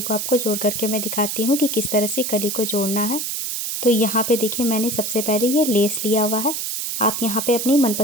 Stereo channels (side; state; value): right; noise; hiss, 3 dB below the sound